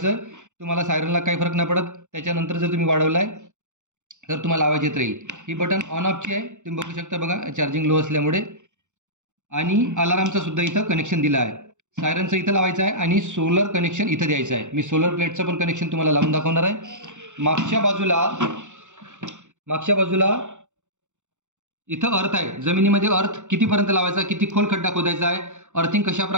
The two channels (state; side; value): late; left; 0.85 ms